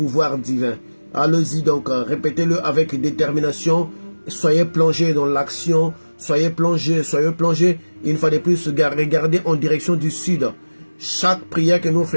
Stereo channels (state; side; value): inverted; both; correlation -1.00